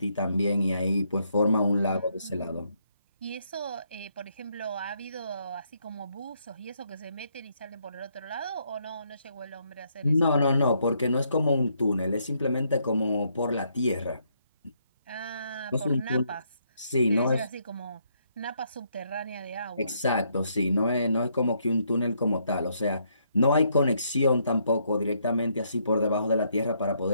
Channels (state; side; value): inverted; both; correlation -0.73